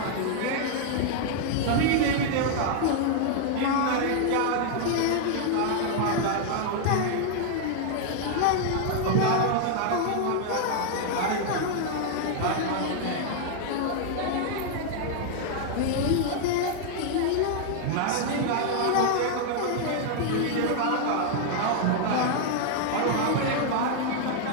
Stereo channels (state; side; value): different; both; correlation 0.00